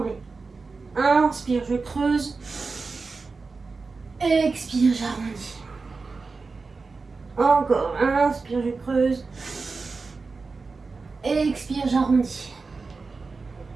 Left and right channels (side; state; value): left; quieter; 4.2 dB